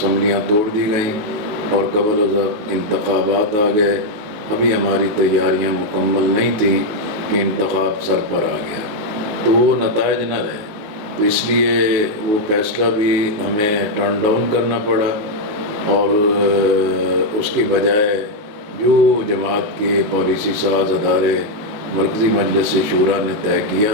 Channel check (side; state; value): left; late; 19 ms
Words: توڑ دی گئیں اور قبل از وقت انتخابات آ گئے۔ ابھی ہماری تیاریاں مکمل نہیں تھیں کہ انتخاب سر پر آ گیا، تو وہ نتائج نہ رہے، تو اس لیے وہ فیصلہ بھی ہمیں ٹرن ڈاؤن کرنا پڑا، اور اس کی بجائے جو جماعت کے پالیسی ساز ادارے مرکزی مجلس شورا نے طے کیا،